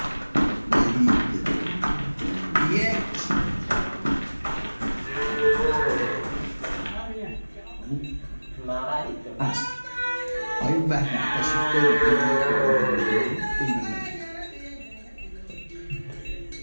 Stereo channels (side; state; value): both; inverted; correlation -1.00